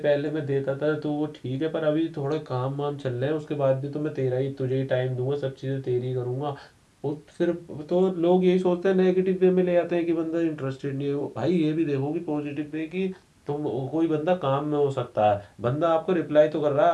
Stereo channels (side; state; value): both; identical; correlation 1.00